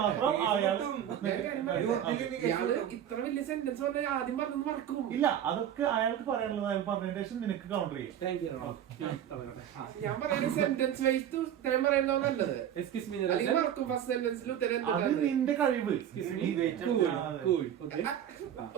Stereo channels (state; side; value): quieter; left; 10.1 dB